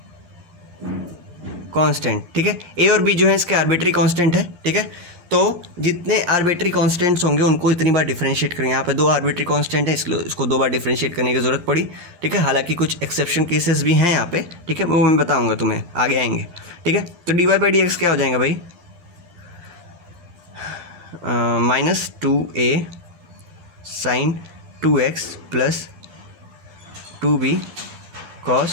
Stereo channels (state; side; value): late; left; 11 ms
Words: कांस्टेंट, ठीक है। a और b जो है इसके आर्बिट्री कांस्टेंट है, ठीक है। तो जितने आर्बिट्री कांस्टेंट्स होंगे उनको इतनी बार डिफरेंशिएट करेंगे। यहाँ पे 2 आर्बिट्री कांस्टेंट है, इसको 2 बार डिफरेंशिएट करने की ज़रूरत पड़ी, ठीक है। हालांकि कुछ एक्सेप्शन केसेस भी हैं यहाँ पे, ठीक है, वो मैं बताऊँगा तुम्हें, आगे आएंगे, ठीक है। तो dy बाई डी एक्स क्या हो जाएगा भाई, minus 2a sin 2x plus 2b